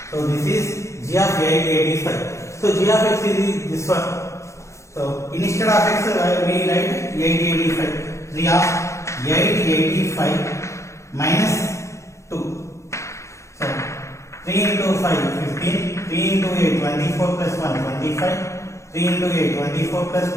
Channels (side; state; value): right; late; 0.14 ms